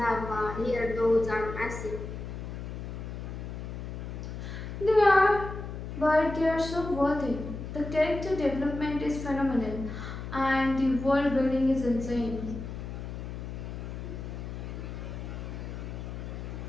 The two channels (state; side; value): noise; left; hum, 7 dB below the sound